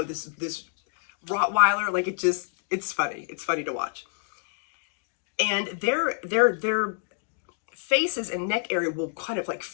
Rottweiler. Like it's funny. It's funny to watch. And their faces and neck area will kind of like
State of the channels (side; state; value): right; silent; digital silence